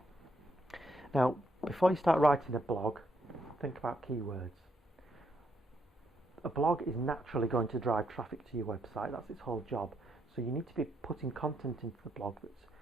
Now, before you start writing a blog, think about keywords. A blog is naturally going to drive traffic to your website. That's its whole job. So you need to be putting content into the blog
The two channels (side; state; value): both; normal; correlation 0.76